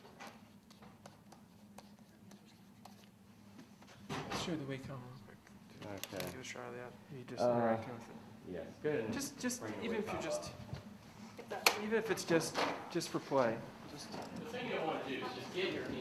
Let's show the Wacom real quick. Okay. Give a shot of that. You just interacting with it. Yes. Good. Just even if you're just, even if it's just for play. Just. The thing you want to do is just get your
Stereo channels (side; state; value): both; identical; correlation 1.00